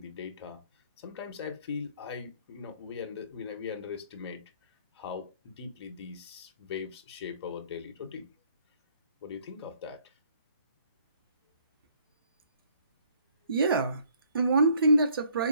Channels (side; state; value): both; inverted; correlation -0.62